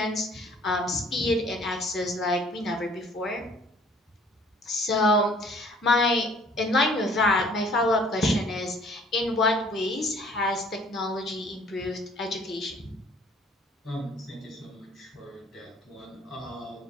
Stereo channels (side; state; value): both; normal; correlation 0.56